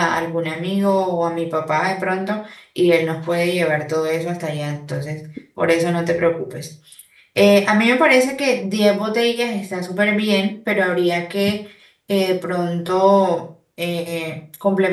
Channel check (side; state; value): both; identical; correlation 1.00